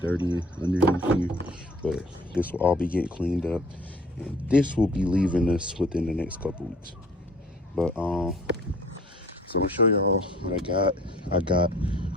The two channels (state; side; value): normal; both; correlation 0.52